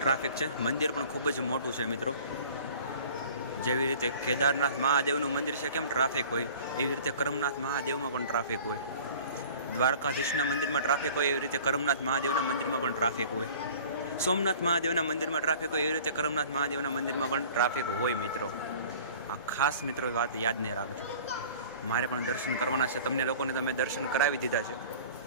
છે. મંદિર પણ ખૂબ જ મોટું છે મિત્રો. જેવી રીતે કેદારનાથ મહાદેવનું મંદિર છે કેમ ટ્રાફિક હોય, એવી રીતે કરમનાથ મહાદેવમાં પણ ટ્રાફિક હોય. દ્વારકાધીશના મંદિરમાં ટ્રાફિક હોય, એવી રીતે કરમનાથ મહાદેવના મંદિરમાં પણ ટ્રાફિક હોય. સોમનાથ મહાદેવના મંદિરમાં ટ્રાફિક હોય, એવી રીતે કરમનાથ મહાદેવના મંદિરમાં પણ ટ્રાફિક હોય મિત્રો. આ ખાસ મિત્રો વાત યાદ નહીં રાખજો. મારે પણ દર્શન કરવાના છે. તમને લોકોને તમે દર્શન કરાવી દીધા છે,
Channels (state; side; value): inverted; both; correlation -0.45